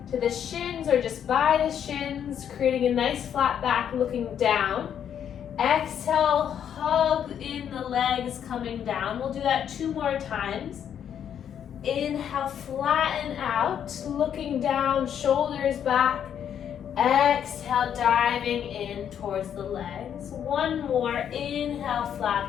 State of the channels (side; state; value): right; quieter; 9.0 dB